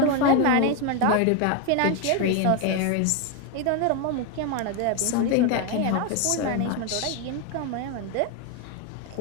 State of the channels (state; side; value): different; both; correlation 0.02